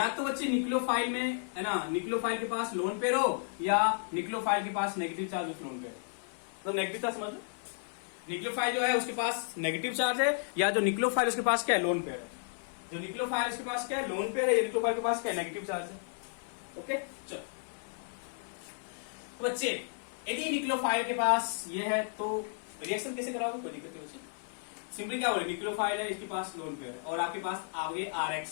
तो बच्चे न्यूक्लियोफाइल में है ना, न्यूक्लियोफाइल के पास लोन पेयर हो, या न्यूक्लियोफाइल के पास negative charge with lone pair. तो नेगेटिव चार्ज समझ लो, न्यूक्लियोफाइल जो है उसके पास नेगेटिव चार्ज है, या जो न्यूक्लियोफाइल उसके पास क्या है? लोन पेयर है। जो न्यूक्लियोफाइल उसके पास क्या है? लोन पेयर है। या न्यूक्लियोफाइल के पास क्या है? नेगेटिव चार्ज है। ओके, चलो तो बच्चे यदि न्यूक्लियोफाइल के पास ये है तो रिएक्शन कैसे कराओगे? कोई दिक्कत नहीं बच्चे। सिंपली क्या बोले, न्यूक्लियोफाइल है, इसके पास लोन पेयर है, और आपके पास आगे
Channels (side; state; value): right; silent; 56 dB below the other